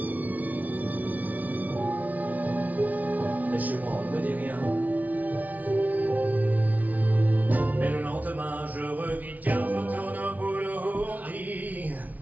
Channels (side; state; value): left; late; 0.074 ms